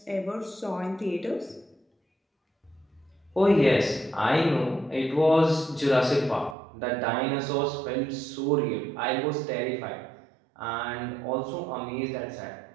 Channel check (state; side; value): drops out; left; at 6.6 s